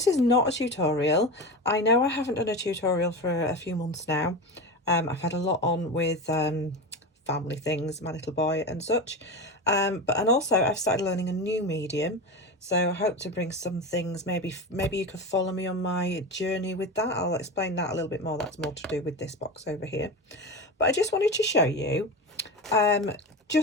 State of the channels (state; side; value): normal; both; correlation 0.23